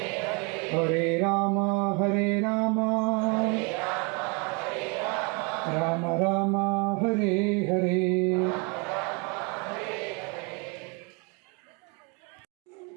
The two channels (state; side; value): quieter; left; 32.0 dB